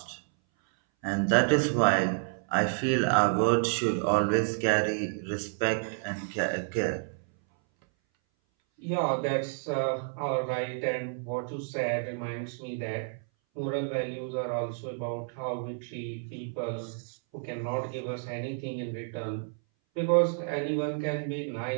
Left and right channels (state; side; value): silent; left; 58 dB below the other